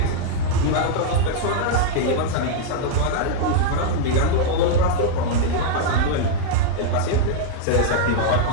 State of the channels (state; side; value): different; both; correlation -0.01